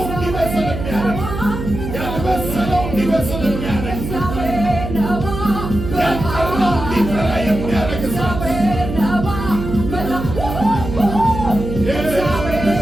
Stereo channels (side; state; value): right; noise; hum, 6 dB below the sound